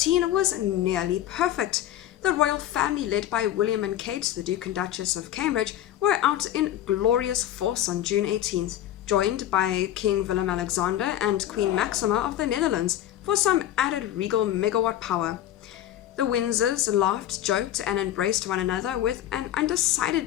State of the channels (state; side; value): quieter; right; 12.3 dB